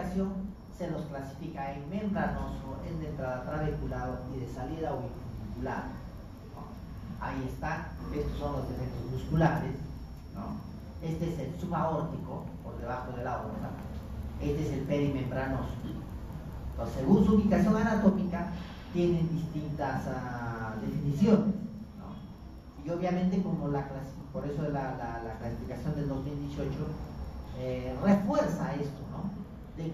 se los clasifica en membranoso, en de entrada trabecular y de salida auricular. Ahí está, estos son los defectos musculares, ¿no? Este es el subaórtico, por debajo de la aorta, este es el perimembranoso. Entonces, según su ubicación anatómica, tienen distintas definiciones, ¿no? Y obviamente, como por eso la clasificación del 2018 refuerza esto, ¿no? De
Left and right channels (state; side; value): identical; both; correlation 1.00